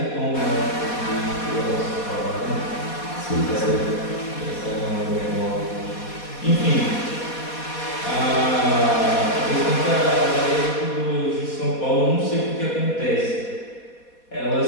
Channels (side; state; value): right; late; 4.2 ms